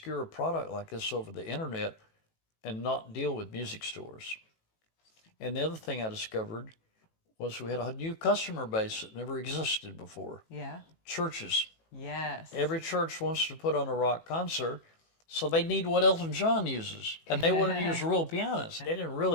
product like this over the internet and not deal with music stores. And the other thing I discovered was we had a new customer base that never existed before. Yeah. Churches. Yes. Every church wants to put on a rock concert, so they need what Elton John uses. And they wanted to use real pianos. They didn't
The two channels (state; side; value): late; right; 18 ms